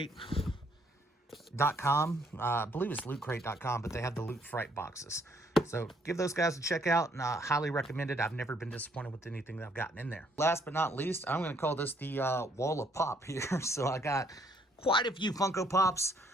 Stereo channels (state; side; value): normal; both; correlation 0.67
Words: .com. I believe it's lootcrate.com, but they have the Loot Fright boxes. So give those guys a check out, and I highly recommend it. I've never been disappointed with anything that I've gotten in there. Last but not least, I'm going to call this the wall of pop here. So I got quite a few Funko Pops,